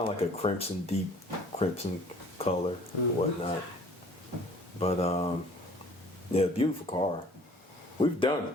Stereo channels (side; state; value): both; normal; correlation 0.52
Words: of like a deep crimson color, whatnot. But yeah, beautiful car. We've done